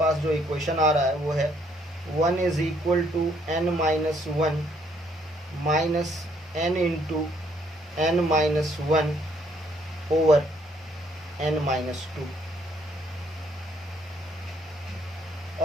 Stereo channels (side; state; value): both; normal; correlation 0.68